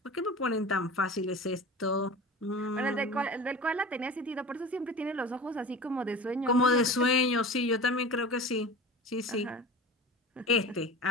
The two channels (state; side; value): normal; both; correlation 0.35